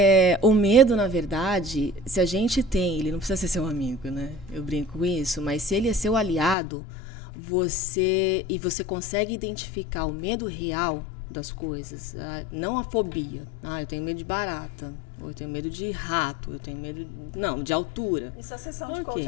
o medo, na verdade, se a gente tem, ele não precisa ser seu amigo, né? Eu brinco com isso, mas se ele é seu aliado, você consegue identificar o medo real das coisas, não a fobia. Eu tenho medo de barata, ou eu tenho medo de rato, eu tenho medo, de altura. Isso a sessão de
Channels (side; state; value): right; drops out; at 6.6 s